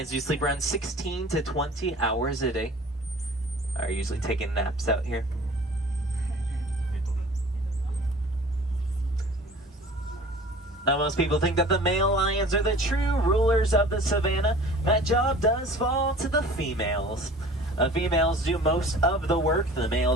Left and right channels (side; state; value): both; normal; correlation 0.45